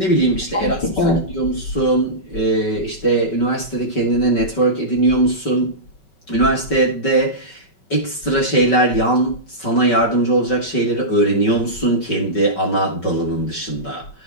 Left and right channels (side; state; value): right; late; 5.3 ms